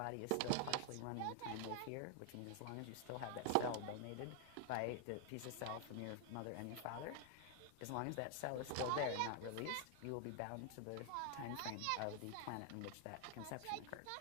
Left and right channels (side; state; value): both; different; correlation 0.00